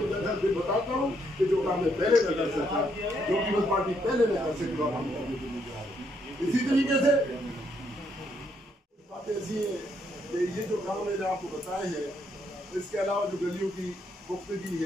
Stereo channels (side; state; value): both; normal; correlation 0.74